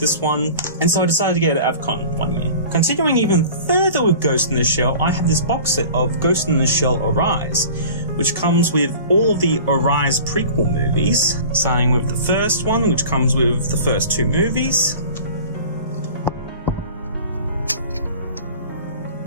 one, and so I decided to get it at AvCon one year. Continuing even further with Ghost in the Shell, I have this box set of Ghost in the Shell Arise, which comes with all of the Arise prequel movies, starting with the first one, which comes with the first 2 movies.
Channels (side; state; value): both; inverted; correlation -0.41